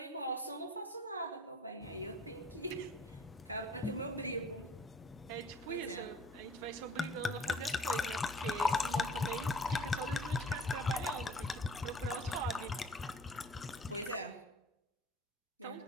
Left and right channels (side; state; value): both; normal; correlation 0.51